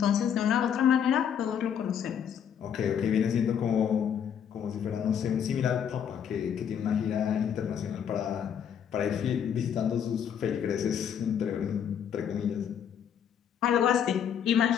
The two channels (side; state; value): right; quieter; 8.4 dB